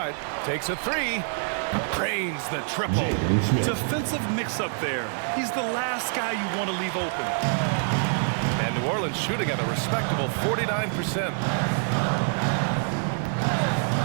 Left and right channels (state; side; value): silent; left; 61 dB below the other